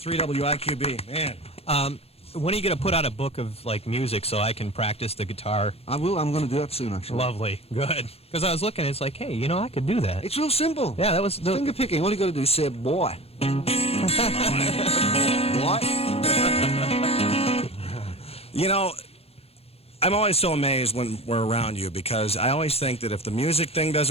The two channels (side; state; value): right; late; 0.29 ms